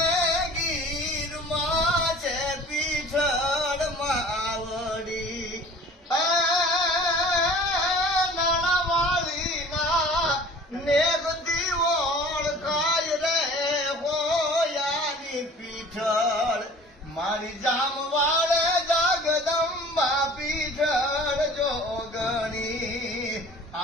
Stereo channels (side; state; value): both; normal; correlation 0.46